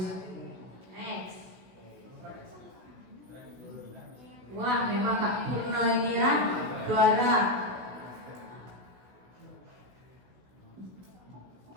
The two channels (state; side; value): late; left; 16 ms